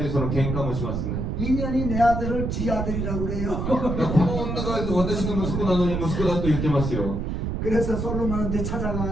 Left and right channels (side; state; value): right; noise; rumble, 2 dB below the sound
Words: その喧嘩もしますね 인연이 내 아들을 지 아들이라고 그래요. この女が私の息子なのに息子だと言ってますよ 그래서 솔로몬한테